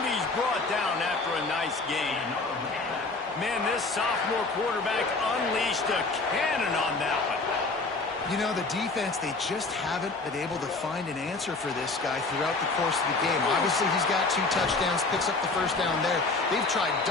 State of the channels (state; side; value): quieter; right; 3.6 dB